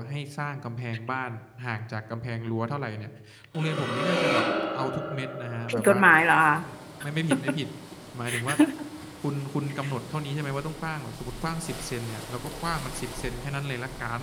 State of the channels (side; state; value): both; identical; correlation 1.00